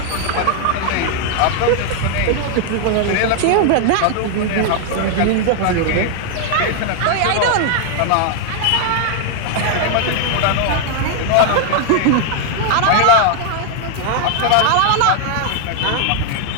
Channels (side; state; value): both; different; correlation 0.00